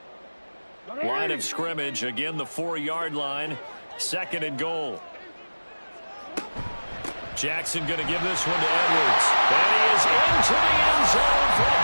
Line of scrimmage, again the 4-yard line. 2nd and goal. Jackson going to give this one to Edwards. And he is into the end zone for a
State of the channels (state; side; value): inverted; both; correlation -1.00